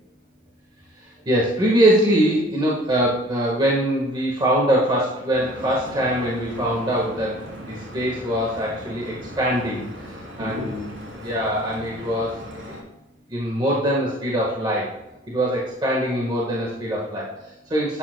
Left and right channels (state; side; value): normal; both; correlation 0.50